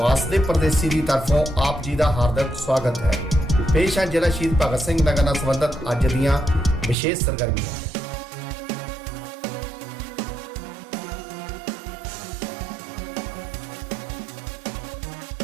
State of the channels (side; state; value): left; drops out; at 7.0 s